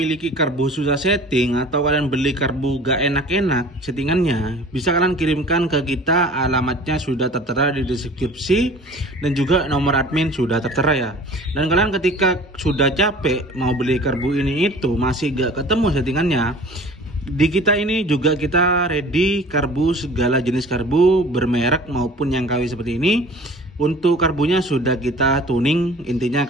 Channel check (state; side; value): normal; both; correlation 0.45